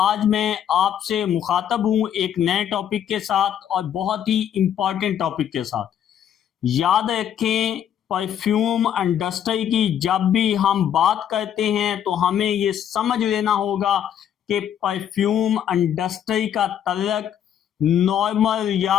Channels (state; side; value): quieter; right; 9.6 dB